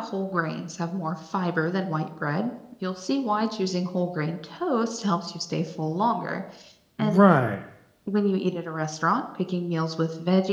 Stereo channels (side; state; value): both; identical; correlation 1.00